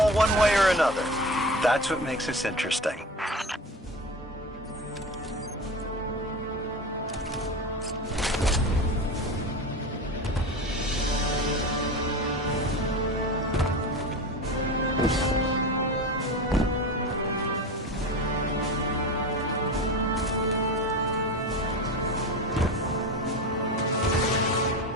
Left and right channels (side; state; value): both; normal; correlation 0.28